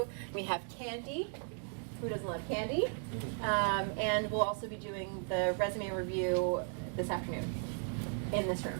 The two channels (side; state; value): left; silent; 54 dB below the other